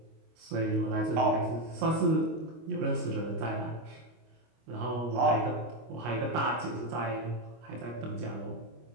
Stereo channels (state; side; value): late; left; 25 ms